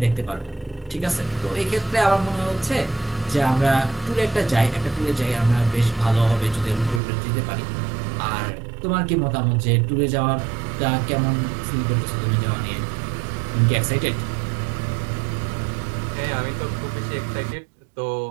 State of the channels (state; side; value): drops out; left; at 7.0 s